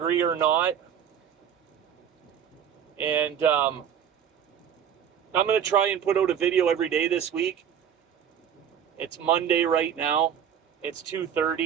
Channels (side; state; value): left; quieter; 8.7 dB